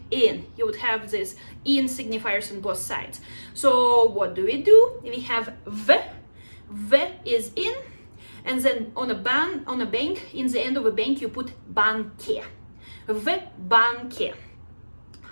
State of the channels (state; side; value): inverted; both; correlation -1.00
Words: in. You would have this in signifiers on both sides. So what do? We have v, V is in, and then on a bank, in the end of a bank, you put banke. V banke.